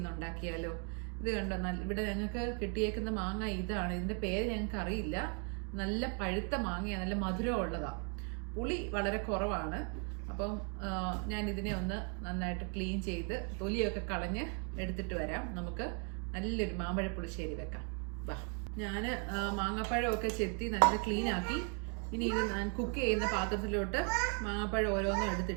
ഉണ്ടാക്കിയാലോ. ഇത് കണ്ടോ, ഇവിടെ ഞങ്ങൾക്ക് കിട്ടിയേക്കുന്ന മാങ്ങ ഇതാണ്. ഇതിന്റെ പേര് ഞങ്ങൾക്ക് അറിയില്ല. നല്ല പഴുത്ത മാങ്ങയാണ്, നല്ല മധുരം ഉള്ളതാ. പുളി വളരെ കുറവാണ്. അപ്പം ഞാൻ ഇതിനെ ഒന്ന് നന്നായിട്ട് ക്ലീൻ ചെയ്ത് തൊലിയൊക്കെ കളഞ്ഞ് എടുത്തിട്ട് വരാം. നമുക്ക് നല്ലൊരു മാമ്പഴ പുളിശ്ശേരി വെക്കാം. വാ, ഞാൻ മാങ്ങാപ്പഴമൊക്കെ ചെത്തി നല്ല ക്ലീൻ ആക്കി. ഇനി ഇത് ഞാൻ കുക്ക് ചെയ്യുന്ന പാത്രത്തിലോട്ട് മാങ്ങാപ്പഴം ഓരോന്നും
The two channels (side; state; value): left; quieter; 39.6 dB